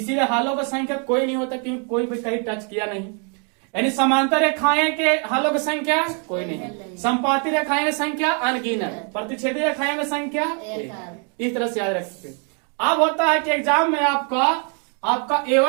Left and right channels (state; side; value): quieter; left; 38.4 dB